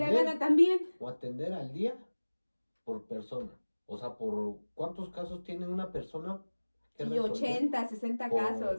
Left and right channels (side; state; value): both; inverted; correlation -1.00